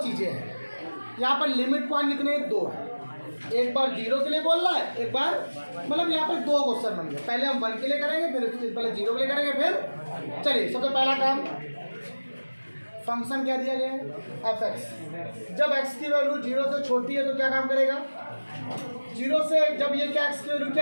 चीजें हैं, यहाँ पर लिमिट पॉइंट कितने 2 है, एक बार 0 के लिए बोल रहा है, एक बार मतलब यहाँ पर 2 क्वेश्चन बन गए। पहले हम 1 के लिए करेंगे, फिर पहले 0 के लिए करेंगे, फिर चलिए सबसे पहला काम फंक्शन क्या दिया गया है fx। जब x की वैल्यू 0 से छोटी है तो क्या काम करेगा 0 से, जब ये क्या x की वैल्यू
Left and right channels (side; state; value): both; inverted; correlation -1.00